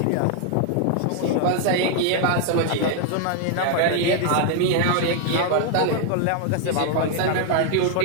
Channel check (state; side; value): different; both; correlation 0.00